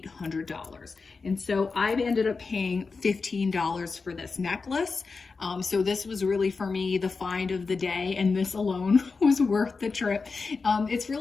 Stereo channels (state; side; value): quieter; right; 4.5 dB